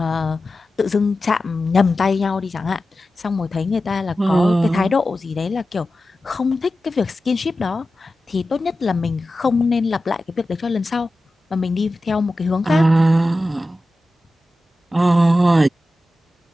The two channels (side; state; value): both; normal; correlation 0.93